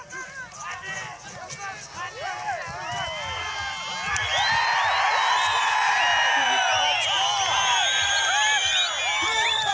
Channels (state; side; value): identical; both; correlation 1.00